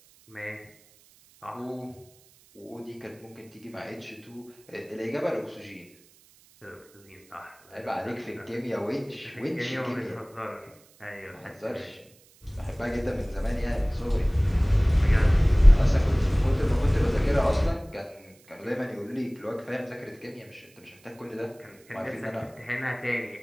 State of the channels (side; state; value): right; noise; hiss, 28 dB below the sound